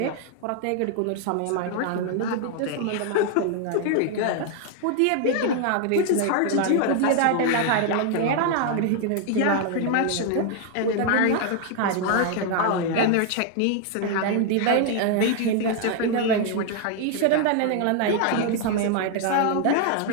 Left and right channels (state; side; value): different; both; correlation 0.00